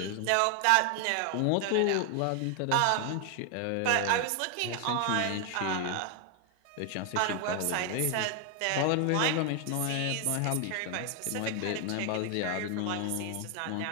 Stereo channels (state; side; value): different; both; correlation 0.00